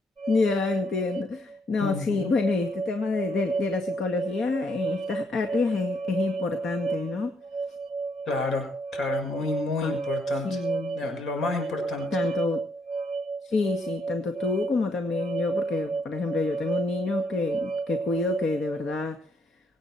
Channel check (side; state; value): both; normal; correlation 0.73